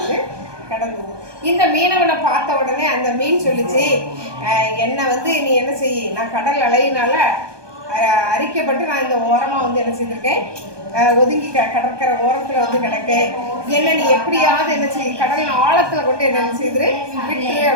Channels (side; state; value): left; late; 1.2 ms